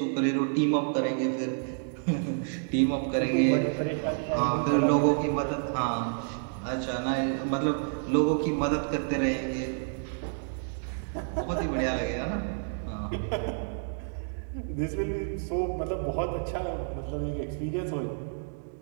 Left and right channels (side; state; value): left; silent; digital silence